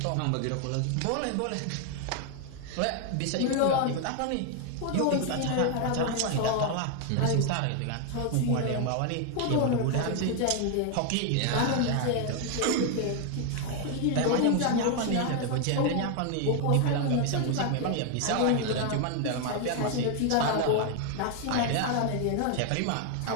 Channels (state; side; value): different; both; correlation 0.01